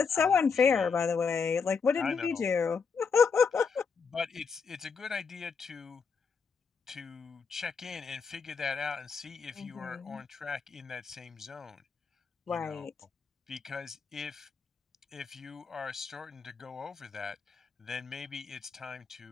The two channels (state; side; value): quieter; right; 5.5 dB